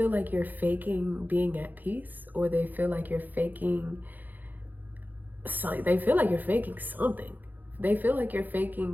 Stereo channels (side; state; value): left; late; 0.085 ms